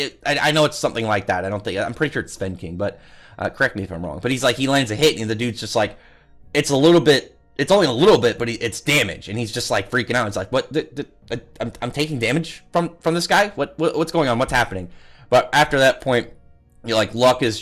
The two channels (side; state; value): both; identical; correlation 1.00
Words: I know it's something like that. I'm pretty sure it's Sven King, but correct me if I'm wrong. But he's like, he lands a hit, and the dude's just like, it's only a little bit, but it's damage, and he's just like freaking out. It's like, what? I'm taking damage from this guy. What's going on? What's happening? But after that point, you're like, Luck is